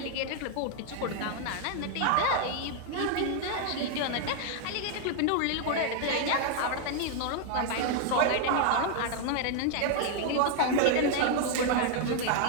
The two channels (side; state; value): both; different; correlation 0.00